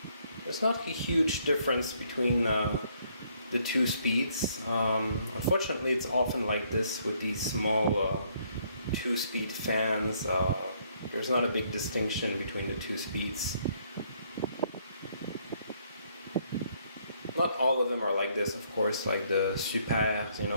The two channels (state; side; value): inverted; both; correlation -0.68